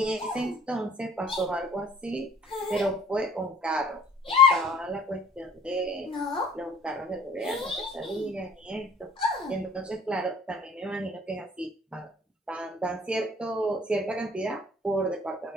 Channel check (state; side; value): normal; both; correlation 0.54